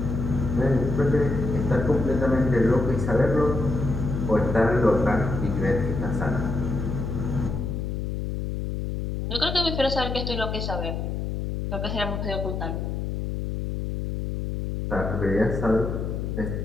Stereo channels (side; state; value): left; noise; hum, 3 dB below the sound